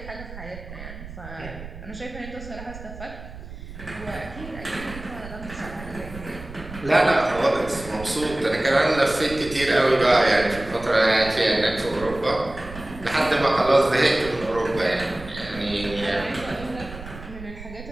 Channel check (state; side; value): noise; right; rumble, 13 dB below the sound